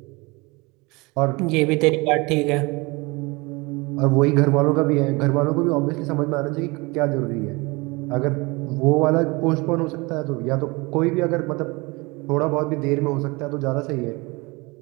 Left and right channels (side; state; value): left; quieter; 25.6 dB